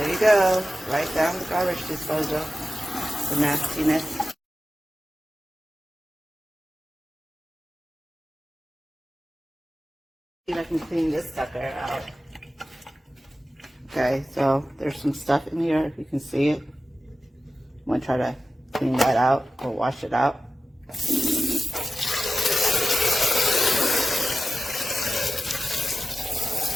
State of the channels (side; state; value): both; normal; correlation 0.94